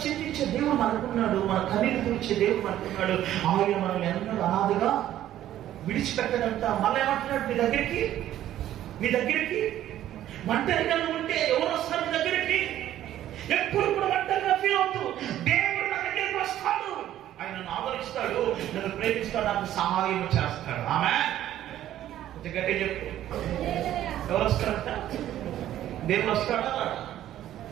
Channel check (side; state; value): left; quieter; 12.5 dB